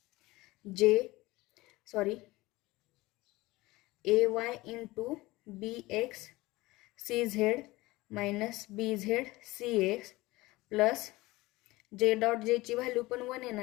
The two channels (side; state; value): right; quieter; 20.1 dB